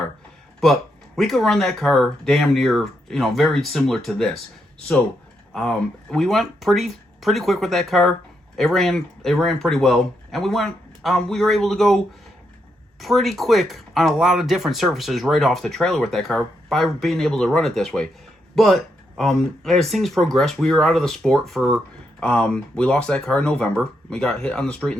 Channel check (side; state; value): both; normal; correlation 0.80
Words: But we could run that car damn near, very similar to this. So we went pretty quick with that car. It ran pretty well, and we were able to go pretty quick on a lot of different surfaces right off the trailer with that car by being able to run it this way. But as things progressed, we were out of the sport for we lost that car in November. We got hit on the street in